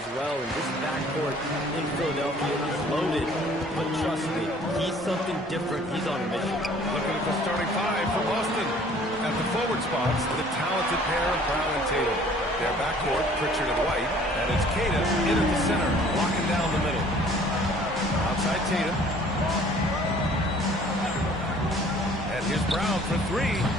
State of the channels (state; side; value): normal; both; correlation 0.54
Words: well. And this backcourt in Philadelphia is loaded. But trust me, he's something different. He's on a mission. Looking at the starting five for Boston. At the forward spots, the talented pair of Brown and Tatum. Their backcourt, Pritchard and White. And it's Tatum in at the center, locking down the middle. Outside Tatum. Here's Brown for three.